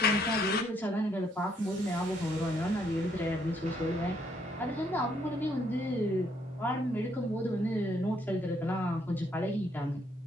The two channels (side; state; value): both; normal; correlation 0.70